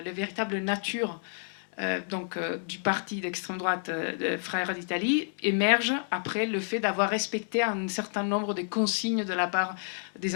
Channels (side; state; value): right; silent; digital silence